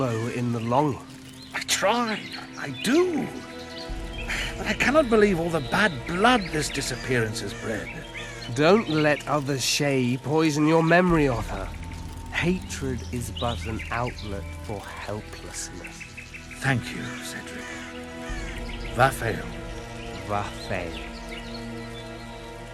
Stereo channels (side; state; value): both; identical; correlation 1.00